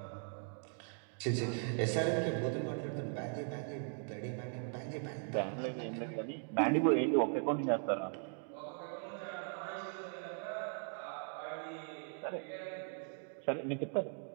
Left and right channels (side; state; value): left; silent; 52 dB below the other